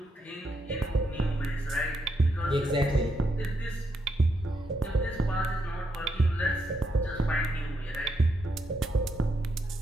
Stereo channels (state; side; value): normal; both; correlation 0.80